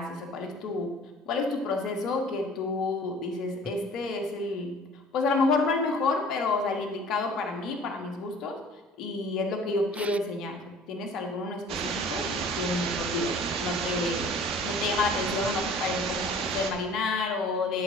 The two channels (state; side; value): normal; both; correlation 0.48